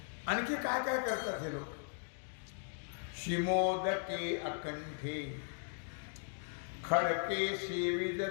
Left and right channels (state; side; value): silent; right; digital silence